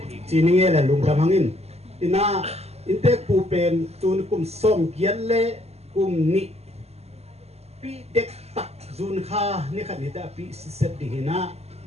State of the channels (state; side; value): late; left; 0.30 ms